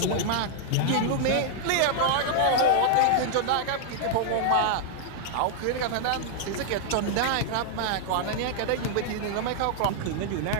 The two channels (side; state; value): both; different; correlation -0.01